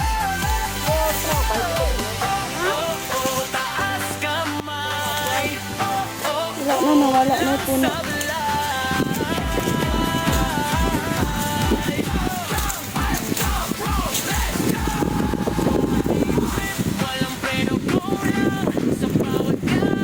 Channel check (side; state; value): both; identical; correlation 1.00